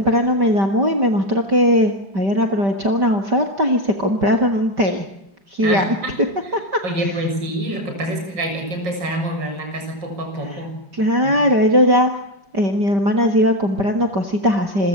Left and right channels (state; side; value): late; left; 5.5 ms